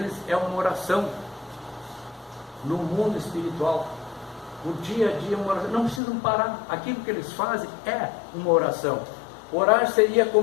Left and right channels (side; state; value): right; drops out; at 6.0 s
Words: é uma oração. No mundo espiritual, o dia a dia é uma oração. Não precisam parar. Aquilo que eles fazem é uma oração. Orar seria